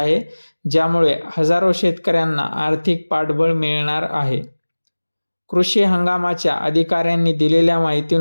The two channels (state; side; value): inverted; both; correlation -1.00